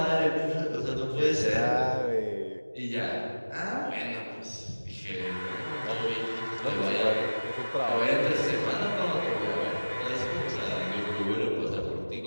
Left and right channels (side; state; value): both; inverted; correlation -1.00